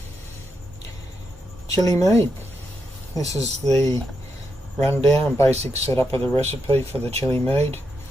Chilli Mead. This is the rundown and basic setup of the recipe for the Chilli Mead.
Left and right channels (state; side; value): normal; both; correlation 0.83